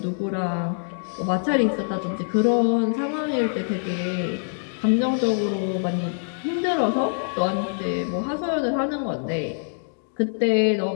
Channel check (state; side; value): silent; right; digital silence